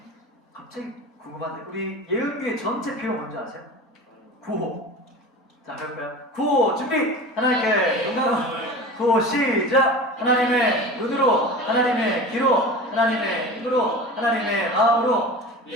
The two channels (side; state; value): both; normal; correlation 0.34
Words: 갑자기 궁금한데 우리 예은교회 전체 표어 뭔지 아세요? 구호. 자, 해볼까요? 구호 준비! 하나님께 영광을. 구호 시작! 하나님의 눈으로, 하나님의 귀로, 하나님의 힘으로, 하나님의 마음으로.